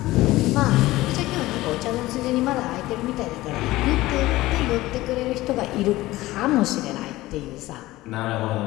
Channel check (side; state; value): right; quieter; 17.8 dB